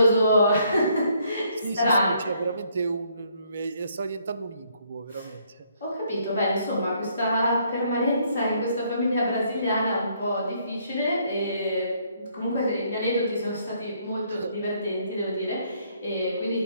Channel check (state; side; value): inverted; both; correlation -0.68